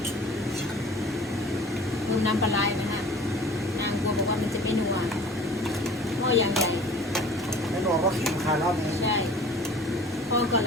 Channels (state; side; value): normal; both; correlation 0.46